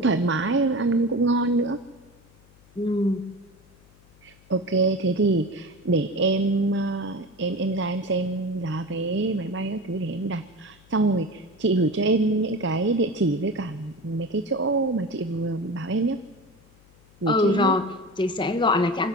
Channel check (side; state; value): left; noise; hum, 28 dB below the sound